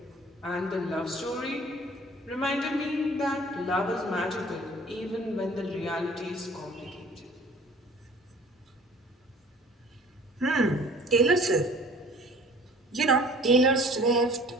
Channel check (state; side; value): normal; both; correlation 0.49